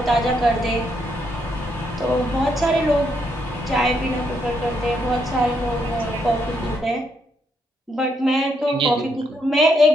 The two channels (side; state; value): both; normal; correlation 0.76